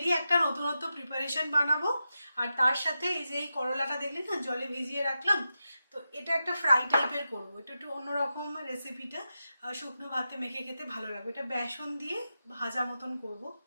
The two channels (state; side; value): inverted; both; correlation -0.90